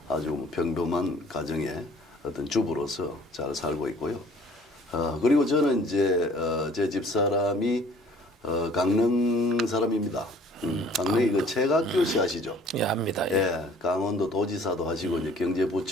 아주 평범한 가정의 어떤 주부로서 잘 살고 있고요. 그리고 저는 이제 제 집사람이 강릉 사람입니다. 강릉이 그 최각규 씨 아시죠? 예, 압니다. 예. 예, 강원도 도지사도 하시고 이제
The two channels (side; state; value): both; normal; correlation 0.54